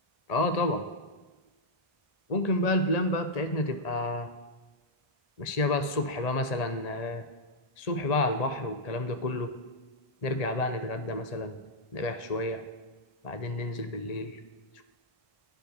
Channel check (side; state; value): right; late; 1.8 ms